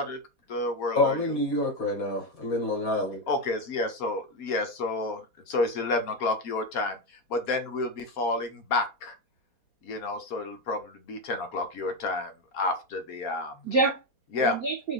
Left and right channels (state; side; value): late; right; 4.2 ms